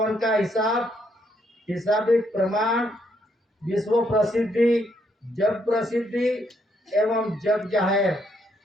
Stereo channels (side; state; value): both; normal; correlation 0.73